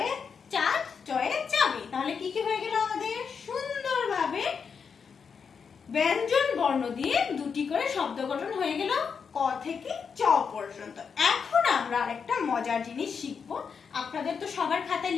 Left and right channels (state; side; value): quieter; right; 6.1 dB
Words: চাঁদ, চয়ে চাবি। তাহলে কি কি হয়ে গেল আমাদের? সুন্দরভাবে ব্যঞ্জন বর্ণ দিয়ে 2টি করে শব্দ গঠন হয়ে গেল ক থেকে চ পর্যন্ত। এখন আমরা আরেকটা মজার জিনিস শিখব। আপনাদের তো সবার খাতায়